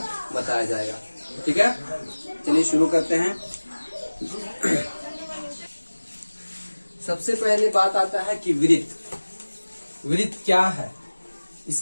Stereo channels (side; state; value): both; inverted; correlation -1.00